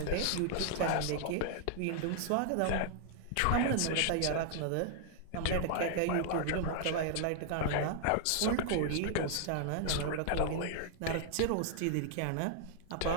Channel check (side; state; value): both; different; correlation 0.00